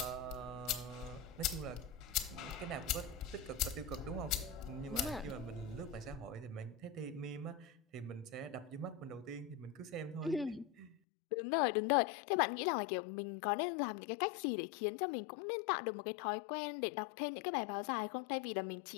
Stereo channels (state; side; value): drops out; right; at 11.0 s